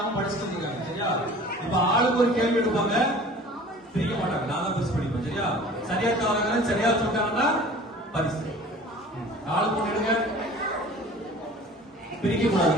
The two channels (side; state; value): both; normal; correlation 0.45